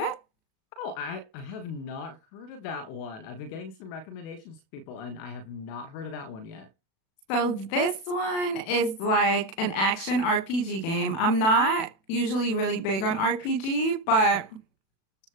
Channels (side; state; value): right; late; 36 ms